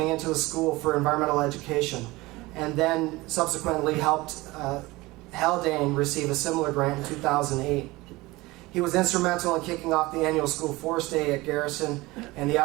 into the school for environmental education, and then subsequently helped Haldane receive a similar grant in 2008. He was instrumental in kicking off the annual School Forest Day at Garrison and the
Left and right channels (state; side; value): quieter; left; 20.9 dB